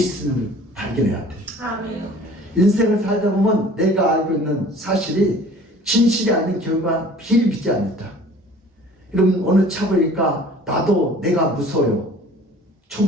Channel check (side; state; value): both; normal; correlation 0.48